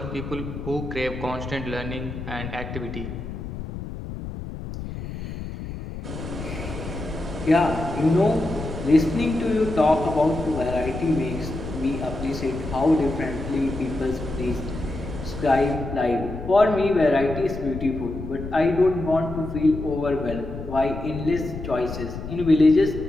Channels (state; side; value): noise; left; rumble, 8 dB below the sound